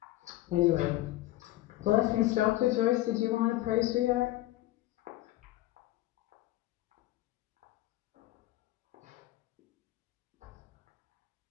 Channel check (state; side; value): quieter; right; 16.3 dB